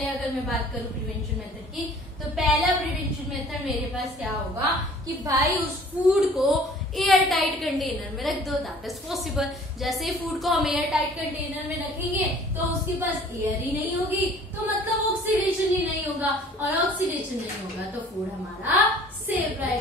अगर मैं बात करूं प्रिवेंशन मेथड की, तो पहला प्रिवेंशन मेथड मेरे पास क्या होगा कि भाई उस फूड को एयर टाइट कंटेनर में रख दो, दैट इज पॉसिबल। जैसे ही फूड को हम एयर टाइट कंटेनर में रखेंगे तो उसके पास एयर ही नहीं होगी, तो मतलब ऑक्सीडेशन ही नहीं होगा, और ऑक्सीडेशन नहीं होगा तो फूड हमारा सेफ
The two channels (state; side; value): normal; both; correlation 0.51